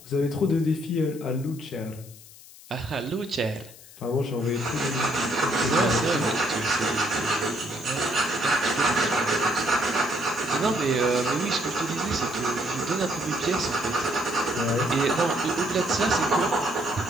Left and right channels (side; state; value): left; noise; hiss, 20 dB below the sound